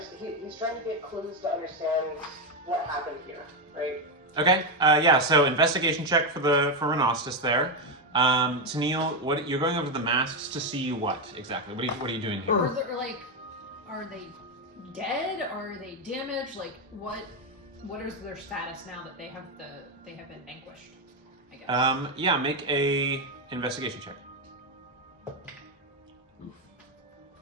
He's trying to get clues to understand what happened here, right? Okay, yeah. So investigation check for Renostus there. Tennille, what you're going over the masks to see what exactly? What are you doing here? Or are they dead? Are they damaged? Like what is their status now that they have been vanquished? I guess. Yeah, make a investigation check.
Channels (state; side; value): normal; both; correlation 0.07